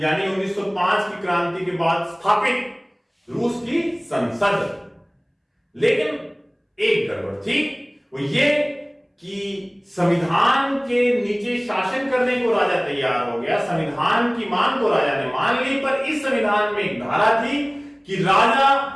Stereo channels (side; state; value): both; identical; correlation 1.00